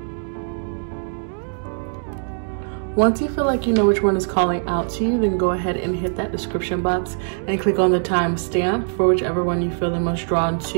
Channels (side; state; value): left; silent; digital silence